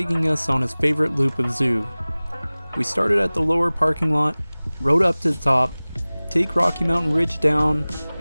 us on his favorite loop of zoo. We started at the lower parking lot, rode up to the top, take Rocky Mountain Ridge down,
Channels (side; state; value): both; inverted; correlation -0.99